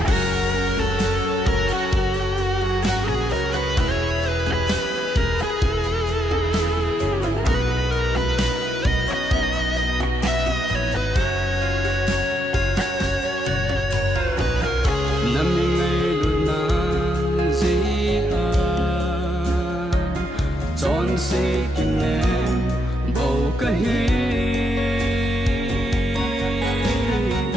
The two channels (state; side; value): normal; both; correlation 0.78